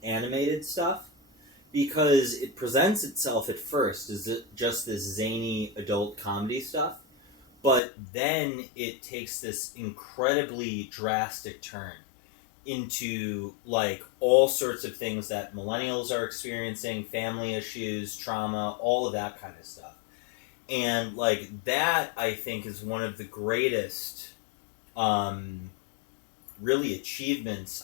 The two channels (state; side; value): drops out; right; at 7.8 s